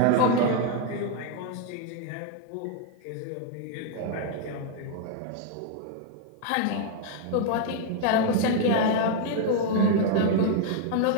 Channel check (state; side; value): different; both; correlation 0.00